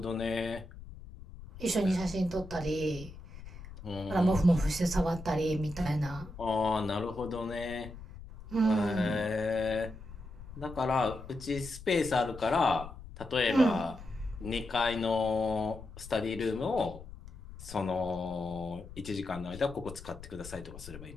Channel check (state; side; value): noise; left; rumble, 14 dB below the sound